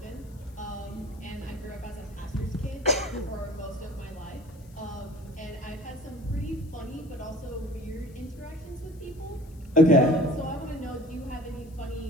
and I grew up as a pastor's kid for most of my life. And I've had some pretty funny but also weird interactions with people. Okay. So I want to know, do you have any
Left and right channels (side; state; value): left; noise; hiss, 28 dB below the sound